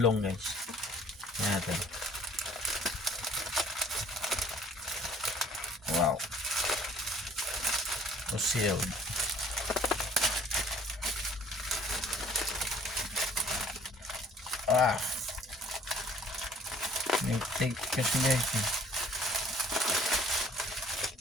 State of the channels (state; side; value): normal; both; correlation 0.56